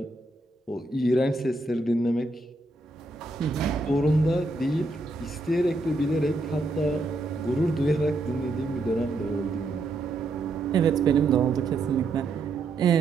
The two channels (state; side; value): quieter; left; 3.1 dB